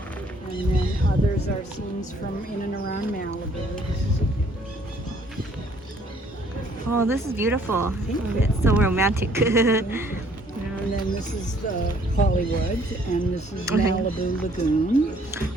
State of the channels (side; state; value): both; normal; correlation 0.61